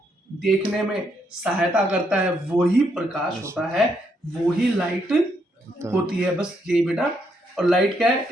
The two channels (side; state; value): both; normal; correlation 0.76